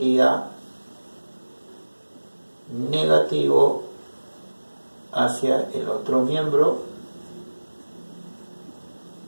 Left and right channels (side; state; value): both; inverted; correlation -1.00